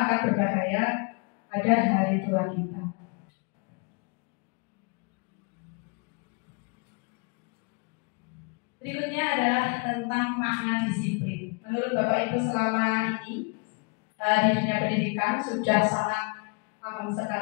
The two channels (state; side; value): quieter; right; 32.4 dB